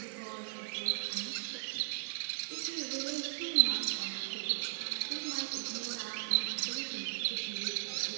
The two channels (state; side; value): silent; left; 53 dB below the other